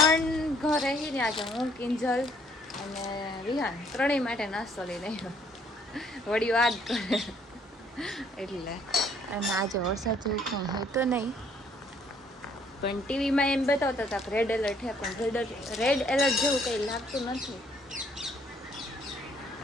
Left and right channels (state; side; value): normal; both; correlation 0.64